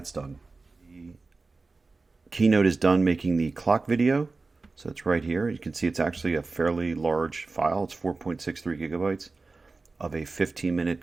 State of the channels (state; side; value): quieter; left; 3.8 dB